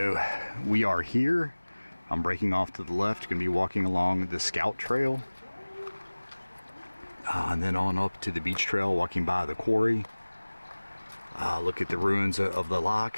we are here. I'm breaking off to the left, gonna be walking along the Scout Trail. And then on up to the beach trail, walking by the quarry. Look at the ruins of the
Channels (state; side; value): inverted; both; correlation -1.00